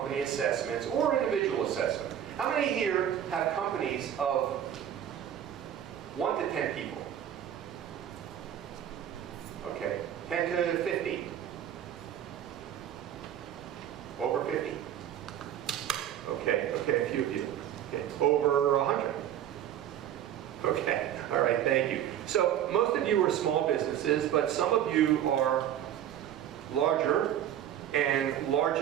assessments or individual assessment. How many here have companies of 1 to 10 people? Okay, 10 to 50? Over 50? Okay, a few of you. Okay, over 100? Okay, all right, thank you. So most of you are small businesses, but some of you are larger and large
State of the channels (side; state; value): left; quieter; 10.5 dB